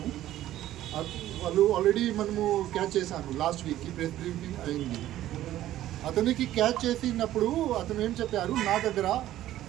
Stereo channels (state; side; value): quieter; left; 13.6 dB